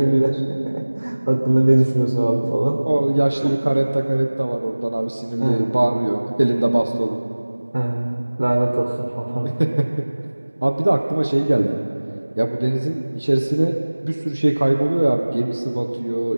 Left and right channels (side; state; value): both; inverted; correlation -1.00